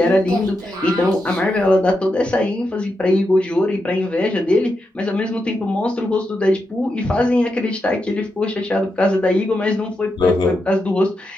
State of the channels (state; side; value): normal; both; correlation 0.86